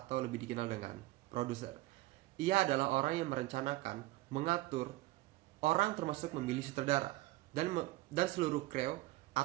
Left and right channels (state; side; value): quieter; left; 18.4 dB